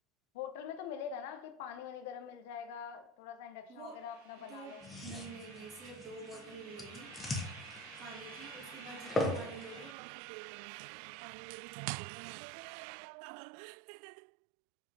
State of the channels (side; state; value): left; drops out; at 10.0 s